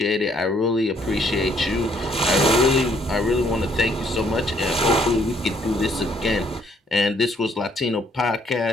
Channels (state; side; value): normal; both; correlation 0.67